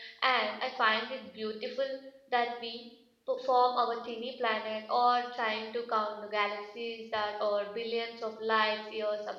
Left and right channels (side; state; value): both; identical; correlation 1.00